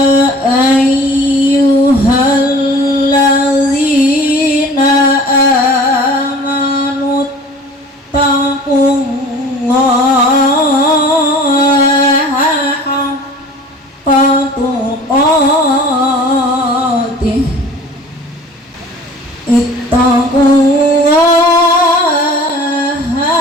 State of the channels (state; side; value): normal; both; correlation 0.45